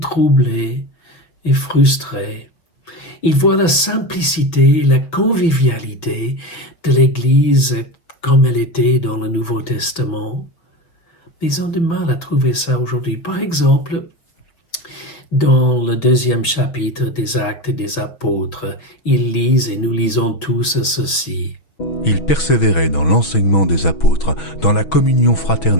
et frustrés. Ils voient la simplicité et la convivialité de l'Église comme elle était dans le Nouveau Testament. Mais ils ont du mal à trouver ça aujourd'hui. Par exemple, dans le 2e chapitre des Actes des Apôtres, ils lisent, et nous lisons tous ceci. Ils persévéraient dans l'enseignement des apôtres, dans la communion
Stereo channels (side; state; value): right; late; 6.1 ms